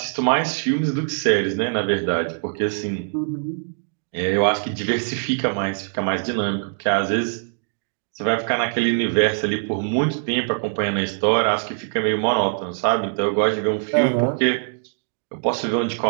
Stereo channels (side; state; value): left; silent; digital silence